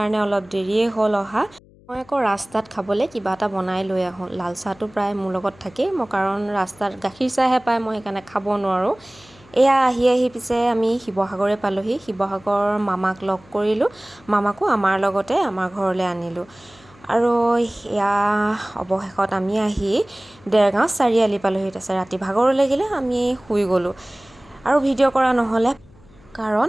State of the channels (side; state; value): left; noise; hum, 26 dB below the sound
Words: অলপ দেৰিয়ে হ'ল অহা। মই আকৌ ৰাস্তাত খাবলৈ কিবা এটা বনাই লৈ আহোঁ। লাল চাহটো প্ৰায় মোৰ লগত থাকেই, মই কাৰণ ৰাস্তাত গাখীৰ চাহহে পায়, মই সেইকাৰণে খাব নোৱাৰোঁ। এয়া আহি পিছে আমি শিৱসাগৰে পালোঁহি। শিৱসাগৰ মামাক লগ কৰিলোঁ, মামাকো আমাৰ লগতে আমাৰ ঘৰলৈ আনিলোঁ। আৰু এয়া অৱশেষত আমি আহি দেৰগাঁও চাৰিআলি পালোঁহি। তাৰপিছত ৰাতি ভাগৰ লাগিলে, আমি শুই গ'লোঁ আৰু ভিডিঅ' কৰা নহ'লে,